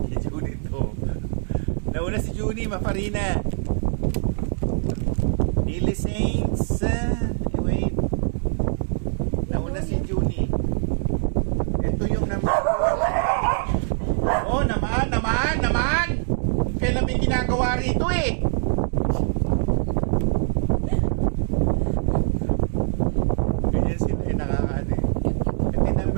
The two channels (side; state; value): left; silent; digital silence